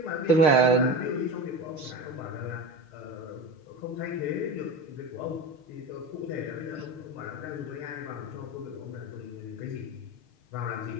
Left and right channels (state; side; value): late; right; 6.6 ms